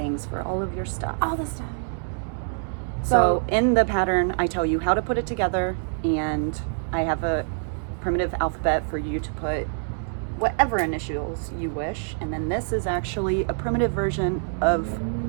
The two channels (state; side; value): silent; left; 61 dB below the other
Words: for all of your stuff. All the stuff. So in the pattern, I tell you how to put it together, and I have a primitive alphabet for you to put whatever initials you wish. And then this is actually a primitive version of